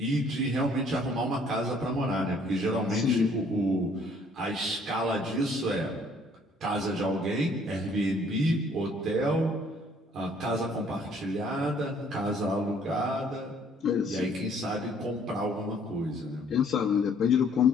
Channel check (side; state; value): both; normal; correlation 0.61